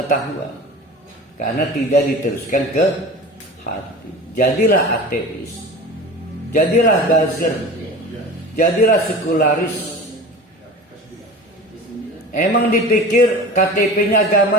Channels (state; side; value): normal; both; correlation 0.35